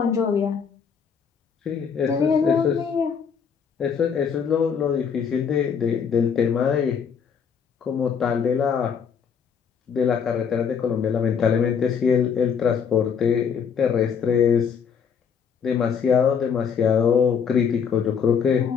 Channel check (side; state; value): right; quieter; 6.8 dB